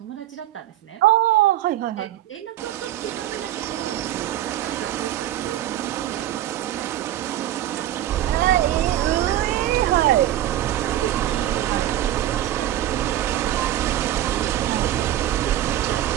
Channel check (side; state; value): left; quieter; 13.0 dB